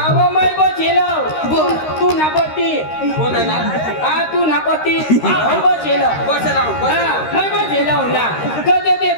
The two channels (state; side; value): late; right; 13 ms